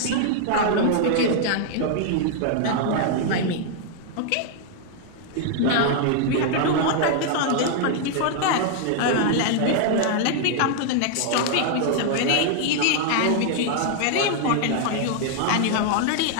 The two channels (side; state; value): both; different; correlation 0.00